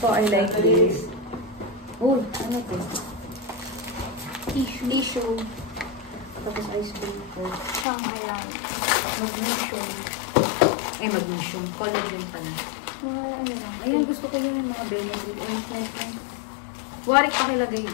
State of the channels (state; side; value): drops out; right; at 7.9 s